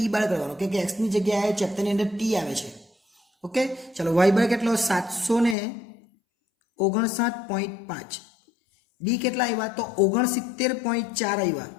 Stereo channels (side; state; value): right; drops out; at 5.6 s